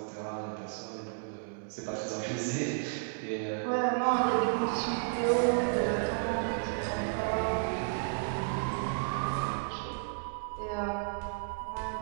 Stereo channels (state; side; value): silent; left; digital silence